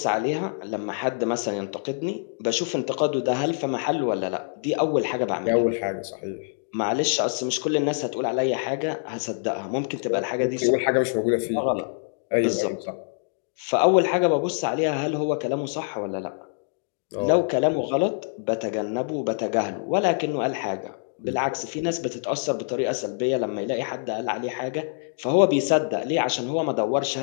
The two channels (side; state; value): right; silent; digital silence